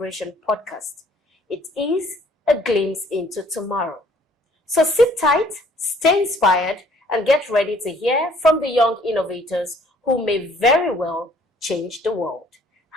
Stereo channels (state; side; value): normal; both; correlation 0.59